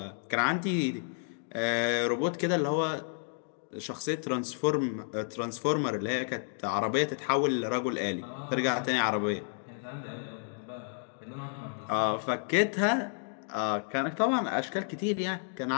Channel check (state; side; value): silent; right; 57 dB below the other